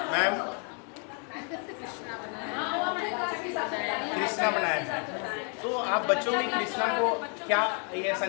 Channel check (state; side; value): quieter; right; 39.5 dB